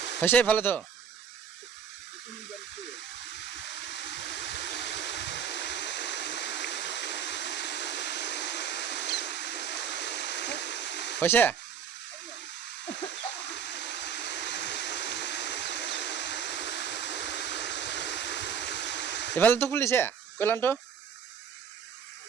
হৈছে ভালেতো হৈছে ইফালেতো খুলিছে কল্যাণটো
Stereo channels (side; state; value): left; quieter; 7.5 dB